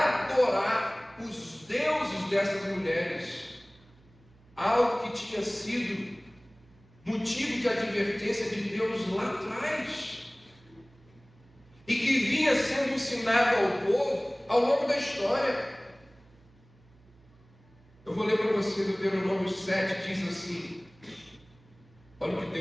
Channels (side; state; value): right; noise; hum, 28 dB below the sound